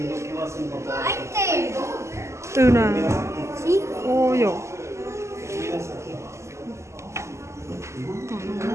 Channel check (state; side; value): late; left; 0.13 ms